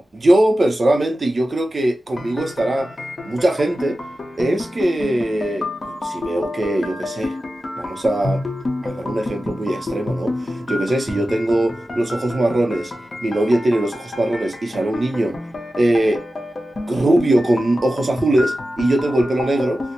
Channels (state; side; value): normal; both; correlation 0.93